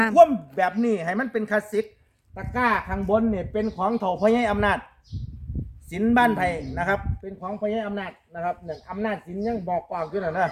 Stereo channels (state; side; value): identical; both; correlation 1.00